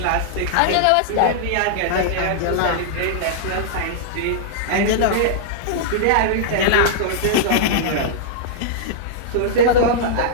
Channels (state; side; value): different; both; correlation -0.02